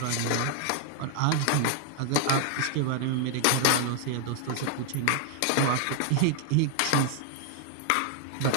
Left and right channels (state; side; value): different; both; correlation 0.00